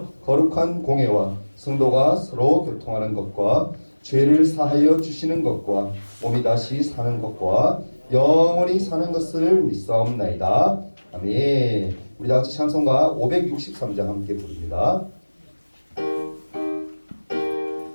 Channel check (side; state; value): both; inverted; correlation -1.00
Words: 거룩한 공회와 성도가 서로 교통하는 것과 죄를 사하여 주시는 것과 몸이 다시 사는 것과 영원히 사는 것을 믿사옵나이다. 아멘. 우리 다 같이 찬송가 563장 함께 부릅니다.